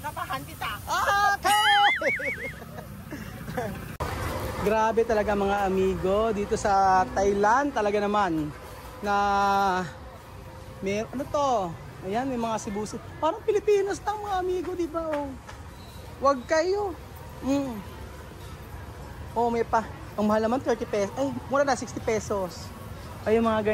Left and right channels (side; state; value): both; identical; correlation 1.00